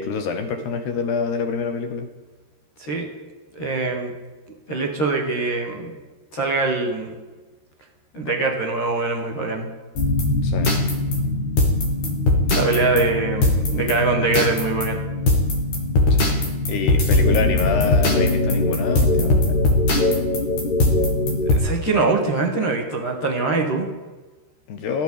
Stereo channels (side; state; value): right; late; 13 ms